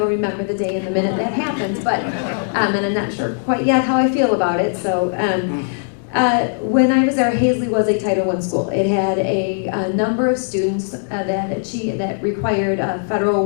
remember the day and the minute that happened, but, and I'm not sure quite yet how I feel about it. So when I was there, Hazley was a Title I school. It had a number of students that required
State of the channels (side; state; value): right; silent; digital silence